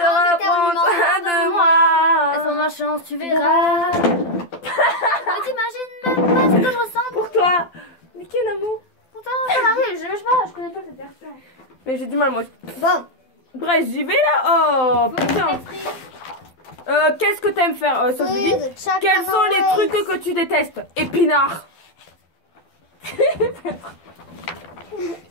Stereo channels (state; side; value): late; right; 12 ms